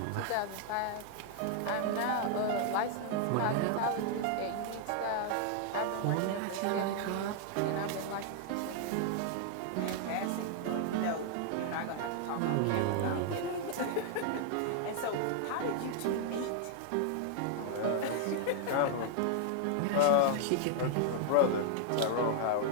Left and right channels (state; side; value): different; both; correlation 0.00